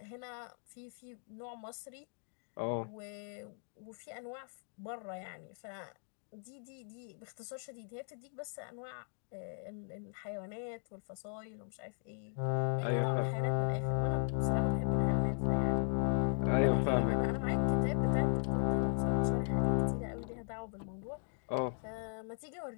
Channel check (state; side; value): silent; right; 53 dB below the other